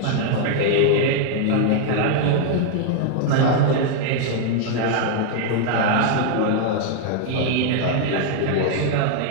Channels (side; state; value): both; different; correlation 0.00